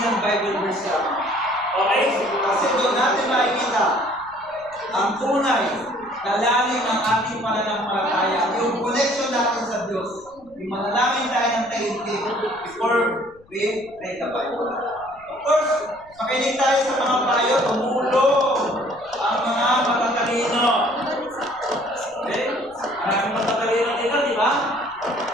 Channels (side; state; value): left; noise; rumble, 28 dB below the sound